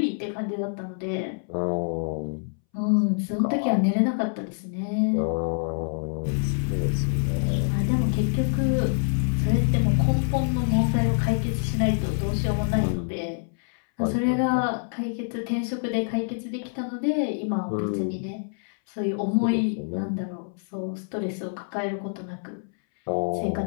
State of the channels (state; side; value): silent; right; 61 dB below the other